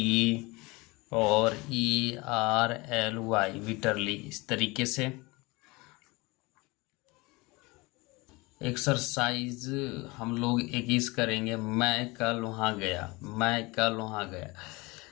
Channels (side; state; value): right; quieter; 24.2 dB